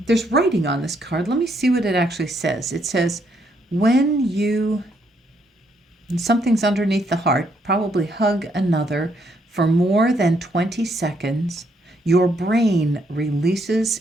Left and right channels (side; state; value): both; normal; correlation 0.73